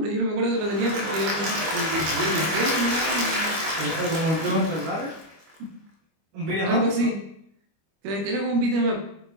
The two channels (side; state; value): left; late; 25 ms